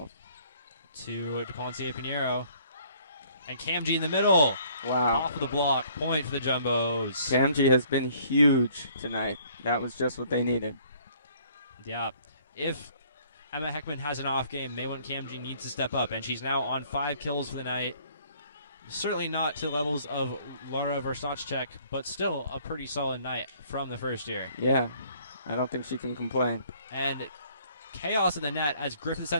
To DePonte Pinheiro. And Kamji in the middle. Wow. Off of the block. Point for the Jumbos. Kamji has been huge tonight. That was just what they needed. Yeah. If Emma Heckman has an off game. Maywon Kamji needs to step up, and she's now on 5 kills for the night. Certainly not to the levels of Laura Verstachek, but still a pretty solid night from the first year. Yeah, I don't think she can complain. And chaos in the net as Griffith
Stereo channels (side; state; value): both; inverted; correlation -0.59